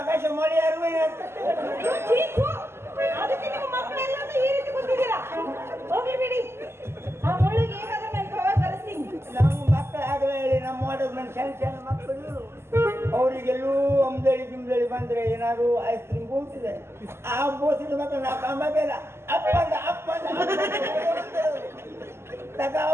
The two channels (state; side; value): late; left; 0.12 ms